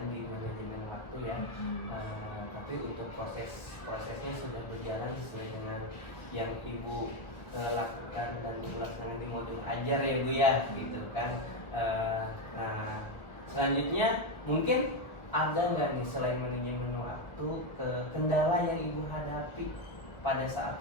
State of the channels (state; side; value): late; right; 1.2 ms